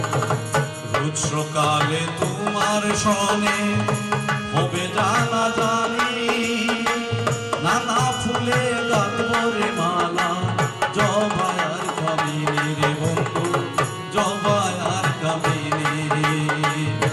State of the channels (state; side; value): identical; both; correlation 1.00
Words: সকালে তোমার সনে হবে জানা জানি নানা ফুলে গাঁথবরে মালা জবায়ার কামিনী রে বন্ধু জবায়ার কামিনী